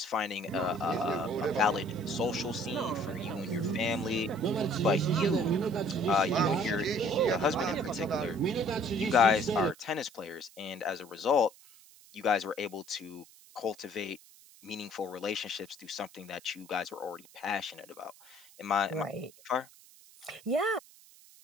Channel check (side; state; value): right; noise; hiss, 24 dB below the sound